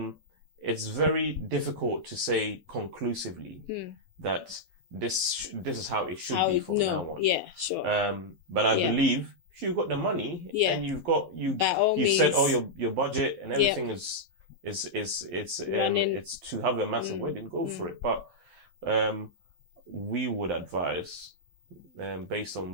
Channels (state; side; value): late; left; 11 ms